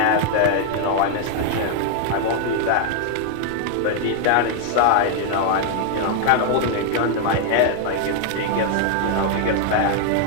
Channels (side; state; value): both; different; correlation 0.00